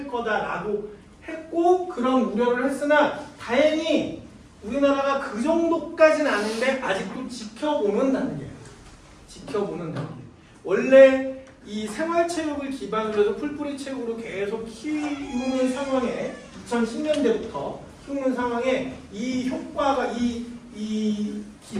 거다라고 했고, 그런 우려를 했으나 다행히 우리나라가 그 정도까지는 아닌데 아직도 지켜보는 단계예요. 지켜보는 단계. 원래 이 생활체육을 기반으로 해서 풀뿌리 체육으로 계속 키우는 상황에 2010년대부터 키우는 상황에 이 효과가 이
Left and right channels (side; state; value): both; identical; correlation 1.00